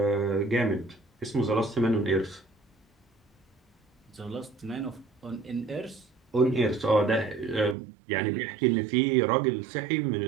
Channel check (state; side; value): drops out; left; at 7.8 s